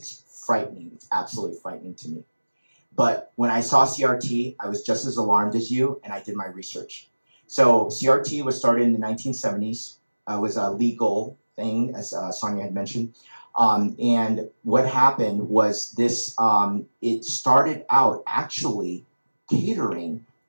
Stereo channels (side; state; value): both; inverted; correlation -1.00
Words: frightening. It's absolutely frightening to me. But when I saw CRT, I was just as alarmed as you, and I did my research. So CRT was started in the 1970s. It was a legal thing, as Sonia had mentioned. And what happened was this, it started out actually catering